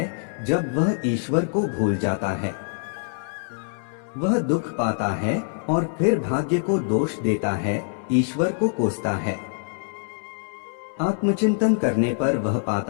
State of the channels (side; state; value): right; silent; 62 dB below the other